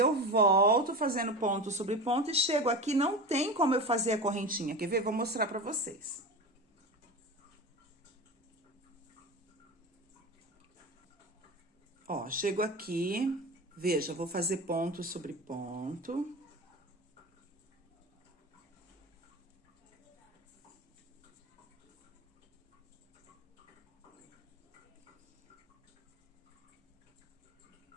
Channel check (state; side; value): normal; both; correlation 0.27